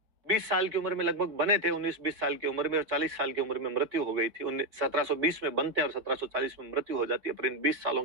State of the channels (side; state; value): left; late; 4.8 ms